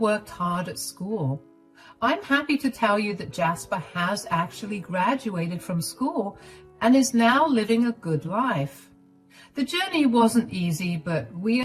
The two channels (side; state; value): both; identical; correlation 1.00